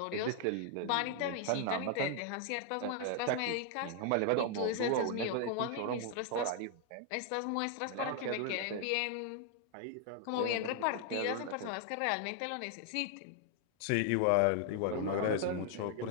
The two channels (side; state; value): both; different; correlation 0.00